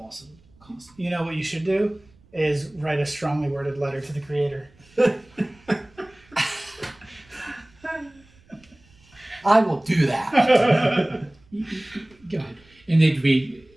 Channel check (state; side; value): noise; right; rumble, 29 dB below the sound